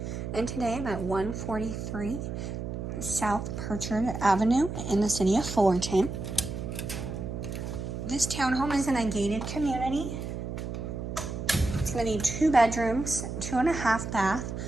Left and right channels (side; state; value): right; noise; hum, 5 dB below the sound